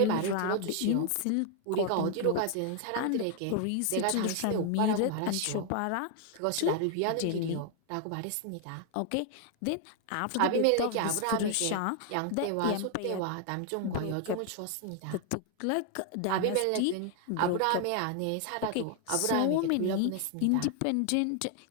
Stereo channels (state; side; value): different; both; correlation 0.00